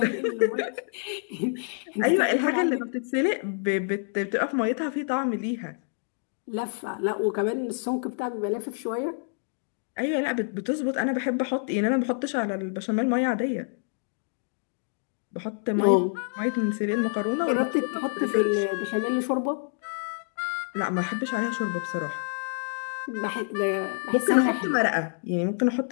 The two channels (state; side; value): silent; right; 60 dB below the other